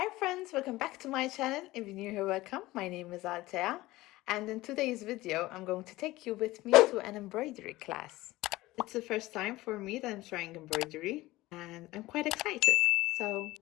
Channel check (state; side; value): quieter; right; 18.4 dB